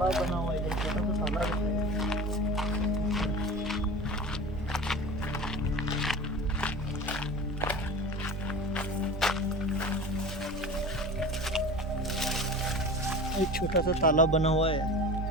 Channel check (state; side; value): normal; both; correlation 0.35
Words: बना हुआ है, इधर छोटा सा तालाब है। एक छोटा सा तालाब बना हुआ है।